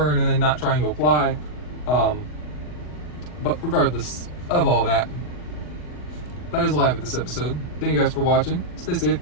and then not trying to apply. But regardless of all that, that is all I have at this episode. Thank you guys for watching. Stay safe.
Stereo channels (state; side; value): late; right; 40 ms